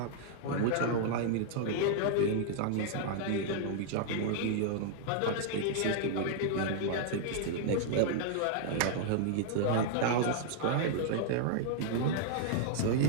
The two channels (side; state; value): both; different; correlation -0.01